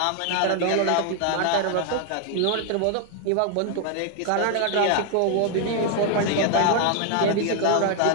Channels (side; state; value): both; different; correlation 0.01